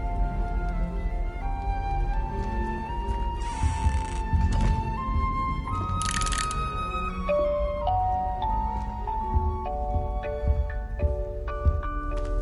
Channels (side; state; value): both; identical; correlation 1.00